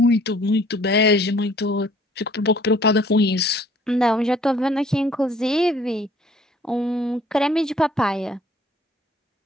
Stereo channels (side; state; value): both; normal; correlation 0.57